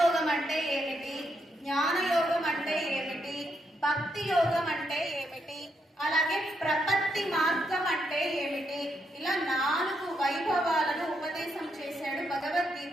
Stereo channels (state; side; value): normal; both; correlation 0.79